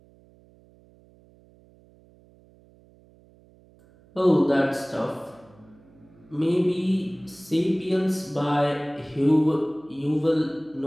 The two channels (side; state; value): right; noise; hum, 28 dB below the sound